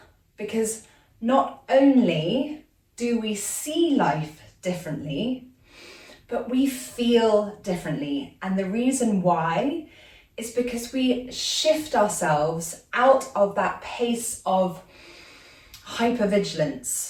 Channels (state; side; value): identical; both; correlation 1.00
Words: because not only do we see life differently, but we feel differently. And the reason why is because we shift ourselves out of that pace of